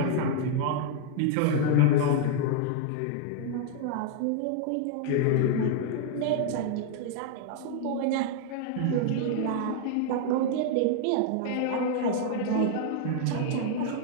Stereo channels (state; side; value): different; both; correlation 0.00